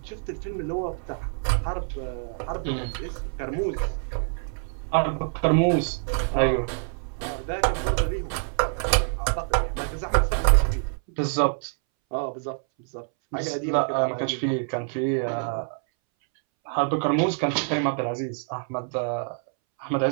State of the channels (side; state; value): left; silent; 61 dB below the other